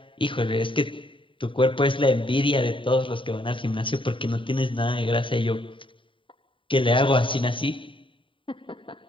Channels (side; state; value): right; late; 0.25 ms